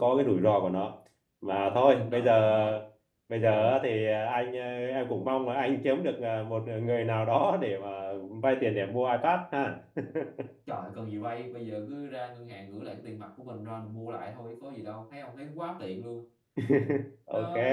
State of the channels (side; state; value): both; identical; correlation 1.00